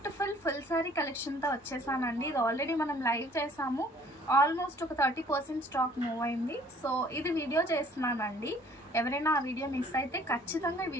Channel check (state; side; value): normal; both; correlation 0.56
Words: ఫుల్ సారీ కలెక్షన్తో వచ్చేసానండి. ఇది ఆల్రెడీ మనం లైవ్ చేసాము, ఆల్మోస్ట్ ఒక 30% స్టాక్ మూవ్ అయింది. సో ఇది వీడియో చేస్తున్నానండి. ఎవరైనా ఆ వీడియో మిస్ అయితే ఖచ్చితంగా ఈ